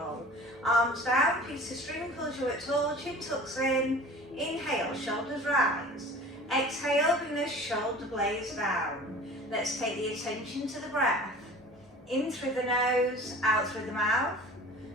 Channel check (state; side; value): normal; both; correlation 0.43